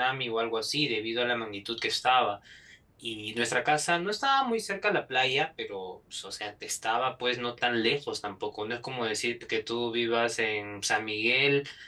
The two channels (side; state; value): both; identical; correlation 1.00